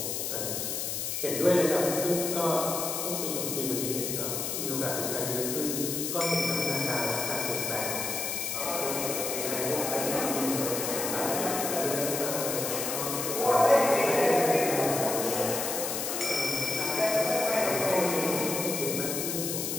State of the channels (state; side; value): noise; left; hiss, 2 dB below the sound